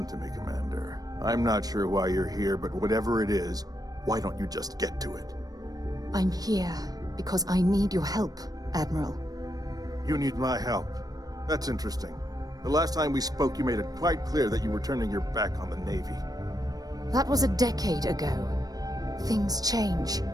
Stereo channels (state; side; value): late; left; 0.18 ms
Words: to me, Commander. I'm not sure why you're here, but whatever it is, why don't you just get to it? I'm here because I need your help, Admiral. You need my help. That's interesting. The last time we spoke, you made it quite clear that you were turning your back on the Navy. That was a decade ago. Things change.